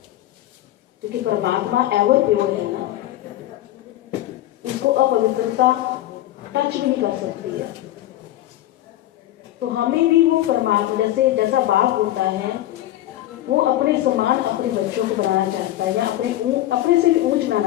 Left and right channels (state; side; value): quieter; right; 14.4 dB